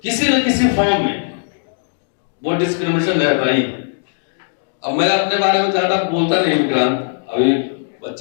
किसी न किसी फॉर्म में वो डिस्क्रिमिनेशन रहता ही। अब मैं अपने बारे में ज्यादा बोलता नहीं विक्रांत, अभी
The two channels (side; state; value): right; silent; 67 dB below the other